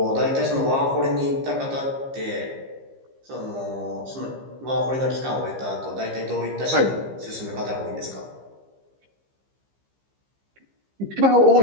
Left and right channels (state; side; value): late; left; 15 ms